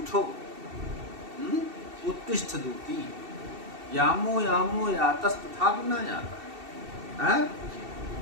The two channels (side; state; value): left; late; 2.7 ms